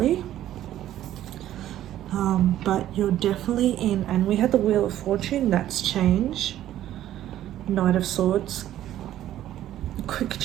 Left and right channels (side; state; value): left; quieter; 12.6 dB